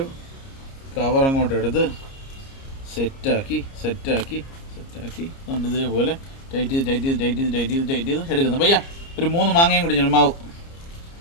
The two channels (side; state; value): right; late; 30 ms